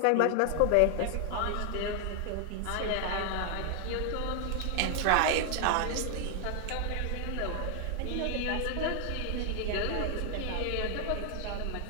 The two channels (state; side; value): different; both; correlation 0.00